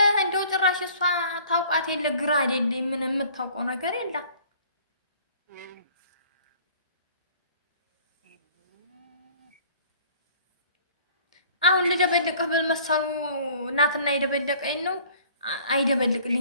እንደው ጭራሽ እሷ ታውቃት የለ ግራ አይደለ ምን የምታውቀው ነገር የለም። አሁን ልደበልቅህ ብል መሰሉ እናትና የደበለቀኝ ነው።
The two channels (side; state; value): both; inverted; correlation -0.52